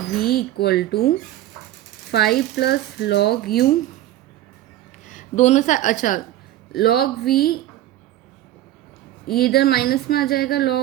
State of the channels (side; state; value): left; quieter; 13.9 dB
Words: we equal to five plus log u, दोनों साइड, अच्छा लॉग वी ये इधर माइनस में आ जाएगा,